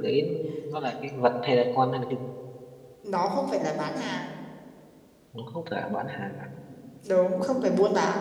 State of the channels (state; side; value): identical; both; correlation 1.00